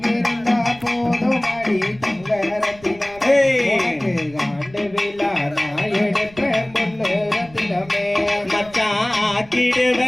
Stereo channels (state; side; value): noise; right; rumble, 23 dB below the sound